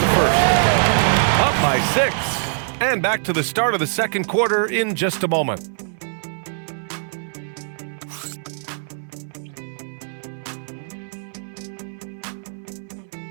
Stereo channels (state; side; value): silent; left; 60 dB below the other